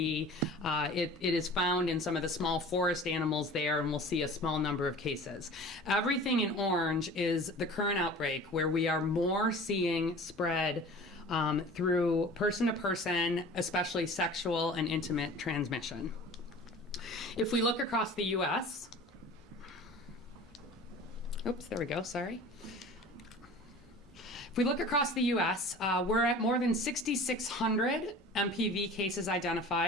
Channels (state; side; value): normal; both; correlation 0.41